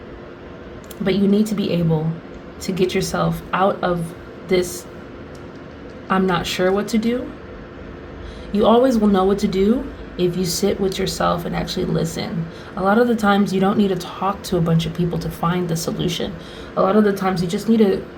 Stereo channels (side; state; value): both; identical; correlation 1.00